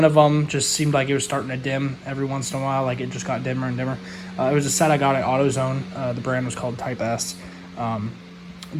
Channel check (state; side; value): identical; both; correlation 1.00